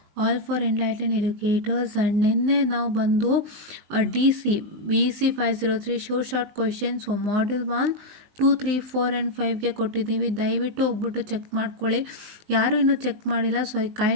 all for Enlightened Educators. And ನಿನ್ನೆ ನಾವು ಬಂದು BC 503 short questions module 1 2 3 4 and 5ಗೆ ಕೊಟ್ಟಿದ್ದೀವಿ. ದಯವಿಟ್ಟು ಹೋಗ್ಬಿಟ್ಟು check ಮಾಡ್ಕೊಳ್ಳಿ. ಯಾರು ಇನ್ನೂ ಚೆಕ್ ಮಾಡಿಲ್ಲ, so I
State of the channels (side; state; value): left; late; 19 ms